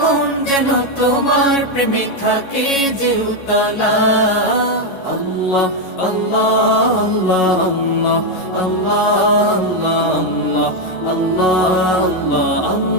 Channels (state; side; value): late; right; 11 ms